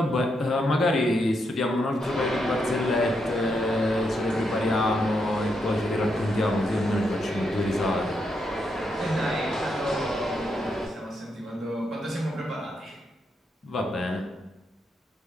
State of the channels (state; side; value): normal; both; correlation 0.81